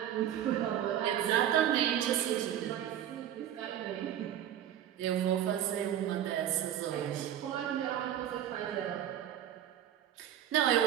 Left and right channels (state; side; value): quieter; left; 10.8 dB